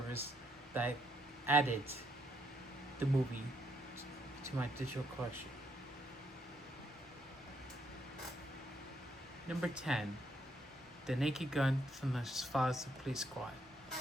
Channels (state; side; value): normal; both; correlation 0.74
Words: that I added the movie to my digital collection. Number 10, The Naked Gun from the Files of Police Squad,